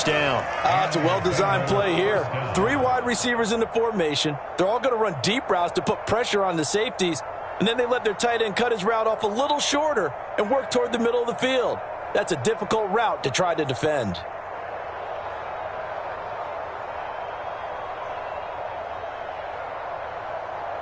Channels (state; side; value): identical; both; correlation 1.00